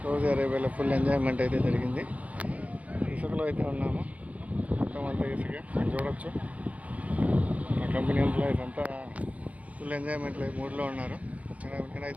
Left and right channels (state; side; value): late; left; 0.068 ms